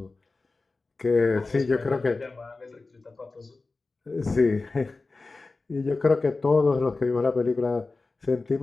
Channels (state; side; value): quieter; right; 3.6 dB